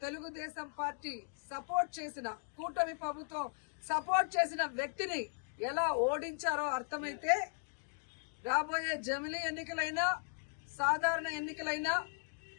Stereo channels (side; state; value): right; silent; digital silence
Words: తెలుగుదేశం పార్టీ సపోర్ట్ చేసిన కూటమి ప్రభుత్వం సపోర్ట్ చేసిన వ్యక్తిని ఎలా ఓడించారో అర్థమైతే రాబోయే జమిలీ ఎన్నికలైనా సాధారణ ఎన్నికలైనా